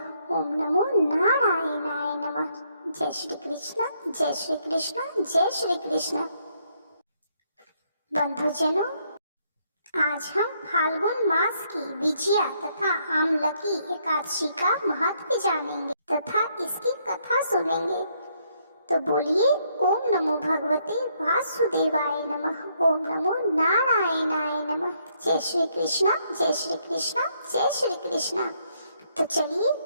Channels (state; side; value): inverted; both; correlation -0.72